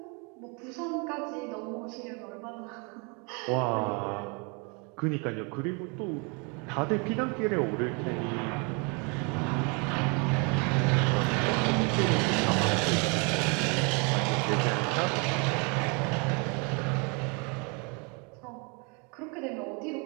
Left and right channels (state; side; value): quieter; left; 32.8 dB